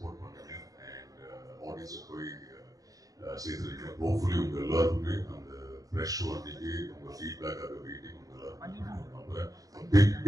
பண்ணுங்க அண்ட் ஆடியன்ஸுக்கு போய் சேர்த்துருக்கீங்க ஹோப்ஃபுல்லி உங்க எல்லாருக்குமே அந்த ஃப்ரெஷ் அன்னைக்கு உங்க ஃபீட்பேக்காக வெயிட்டிங் உங்க எல்லாருக்கும் நம்புறேன்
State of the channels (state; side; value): late; left; 0.17 ms